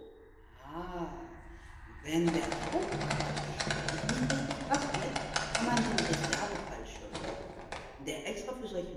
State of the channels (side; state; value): both; identical; correlation 1.00